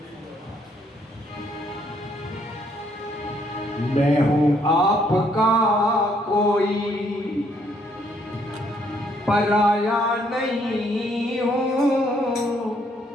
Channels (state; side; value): normal; both; correlation 0.69